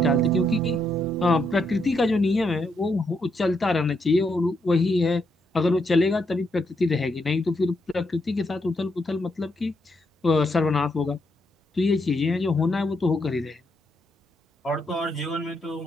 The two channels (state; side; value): normal; both; correlation 0.78